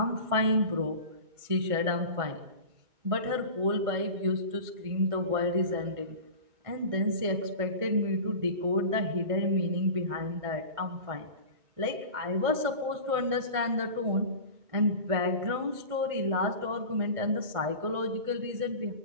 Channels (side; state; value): left; late; 1.5 ms